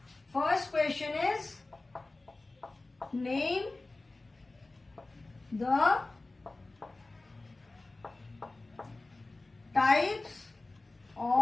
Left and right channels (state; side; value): quieter; right; 3.1 dB